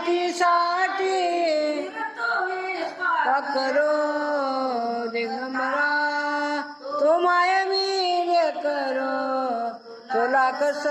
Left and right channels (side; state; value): both; identical; correlation 1.00